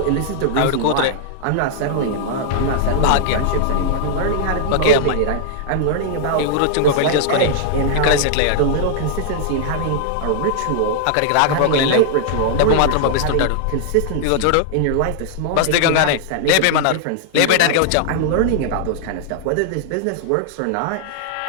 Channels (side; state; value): both; different; correlation -0.01